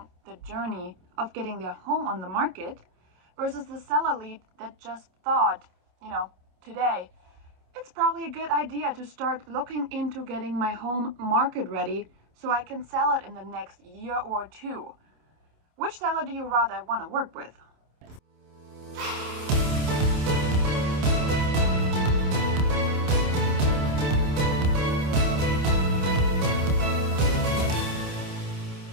the journey of getting their home on the market versus the seller lead that just thought, today, it's probably a good idea to start looking into getting my home market ready so I can sell it in the next year or two. Which seller do you rather want to work with?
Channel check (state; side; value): late; left; 27 ms